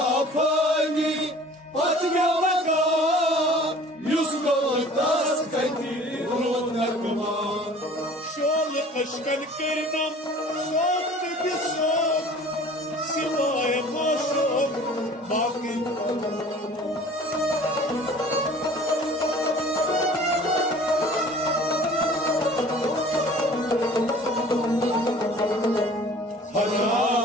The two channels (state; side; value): normal; both; correlation 0.47